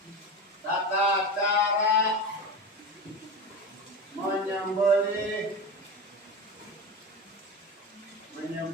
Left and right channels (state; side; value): normal; both; correlation 0.24